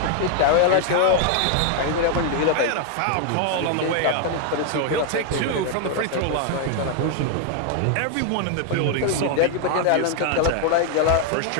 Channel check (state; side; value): different; both; correlation 0.00